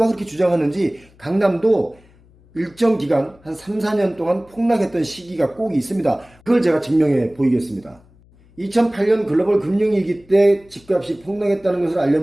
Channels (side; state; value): left; noise; hum, 29 dB below the sound